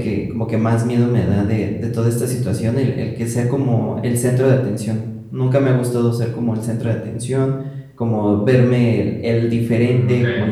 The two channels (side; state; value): both; identical; correlation 1.00